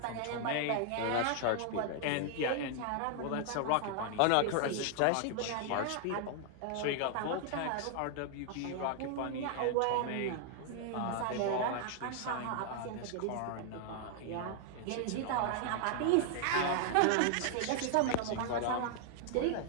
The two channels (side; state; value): both; different; correlation 0.00